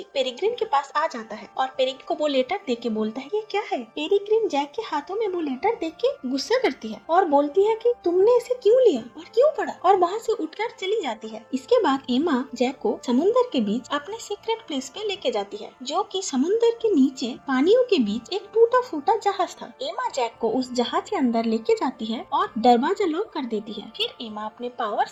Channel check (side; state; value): both; identical; correlation 1.00